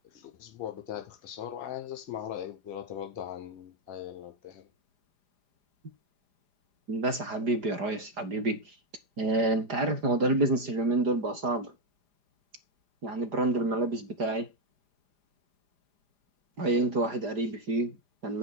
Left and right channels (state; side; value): late; left; 4.9 ms